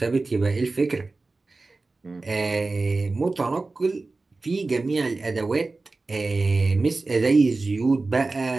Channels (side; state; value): left; quieter; 3.5 dB